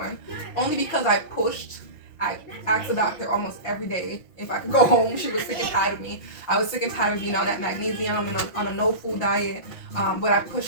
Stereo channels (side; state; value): right; late; 5.7 ms